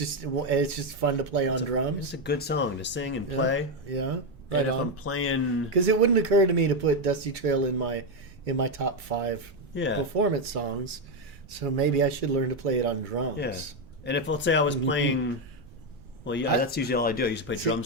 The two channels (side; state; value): right; noise; rumble, 21 dB below the sound